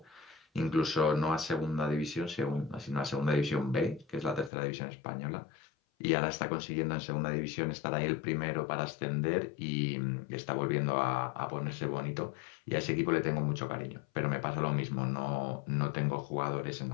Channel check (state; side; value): drops out; right; at 4.5 s